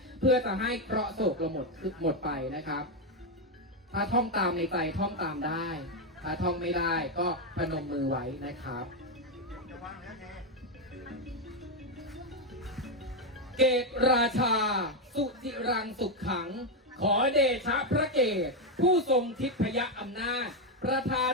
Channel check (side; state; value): both; normal; correlation 0.05